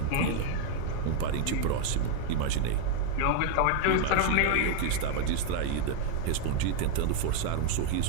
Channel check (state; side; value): different; both; correlation 0.00